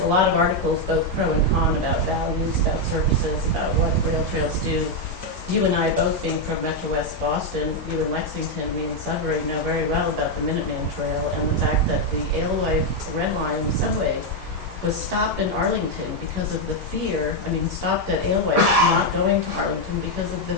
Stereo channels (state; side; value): normal; both; correlation 0.02